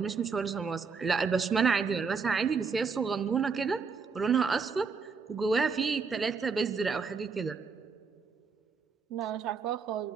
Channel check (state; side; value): quieter; left; 5.3 dB